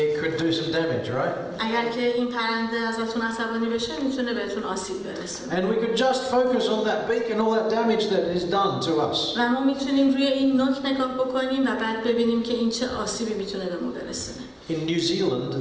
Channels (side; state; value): both; identical; correlation 1.00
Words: could do some damage, right? اگر که این پرنده ازتون عصبانی بشه میتونه بهتون آسیب برسونه. And we could just focus on that beak and all that damage that is done to us. و ما میتونیم روی این نوک نگاه بکنیم و بعد ببینیم که این چه آسیبی میتونه به ما برسونه. In New Zealand,